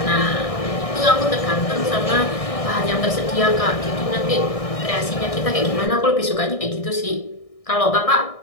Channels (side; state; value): right; late; 1.6 ms